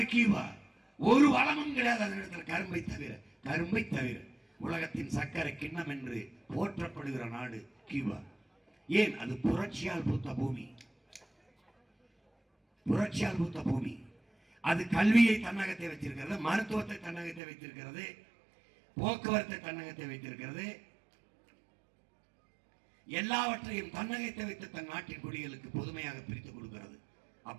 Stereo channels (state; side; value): drops out; left; at 17.4 s